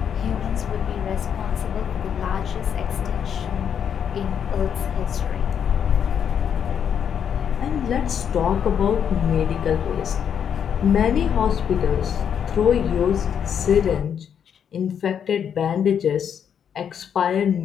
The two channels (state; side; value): quieter; right; 8.1 dB